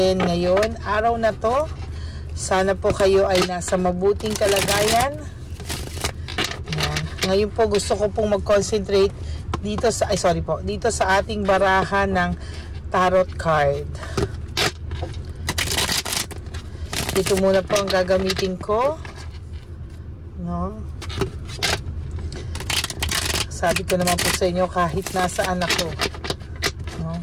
ngayon, araw na to? Sana po kayo ay nasa mabuting kalagayan. Yan. Ngayon po gusto ko pong mag-concentrate dito sa dito sa ating barahan ng tarot card. Ito muna po ang gagamitin ko. No? Sabi ko naman po sa inyo kahit nasaan ako. No?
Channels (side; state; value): both; identical; correlation 1.00